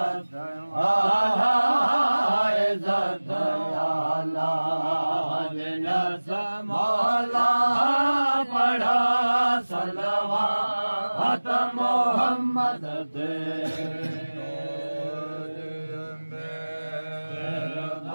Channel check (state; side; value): inverted; both; correlation -1.00